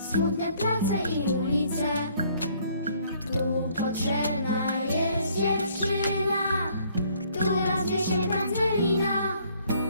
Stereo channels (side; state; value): both; inverted; correlation -0.62